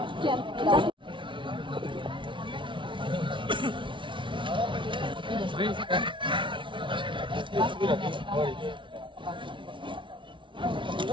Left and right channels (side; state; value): left; late; 0.24 ms